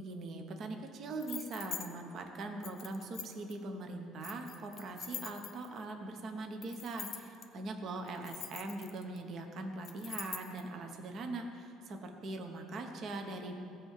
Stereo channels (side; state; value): both; normal; correlation 0.66